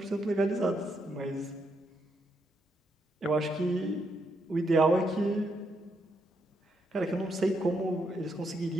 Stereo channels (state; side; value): normal; both; correlation 0.78